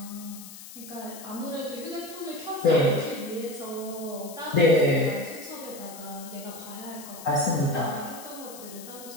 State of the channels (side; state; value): left; noise; hiss, 14 dB below the sound